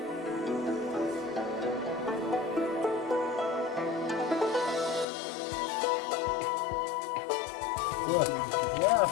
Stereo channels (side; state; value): right; drops out; at 5.1 s